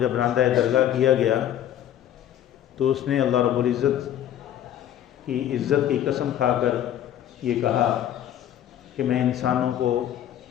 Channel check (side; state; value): right; quieter; 11.1 dB